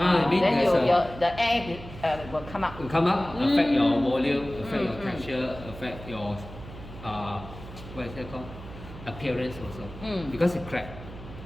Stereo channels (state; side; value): noise; right; hum, 14 dB below the sound